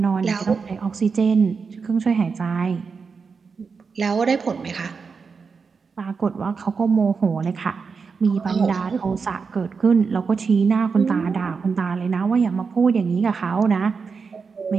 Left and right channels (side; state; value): left; quieter; 5.2 dB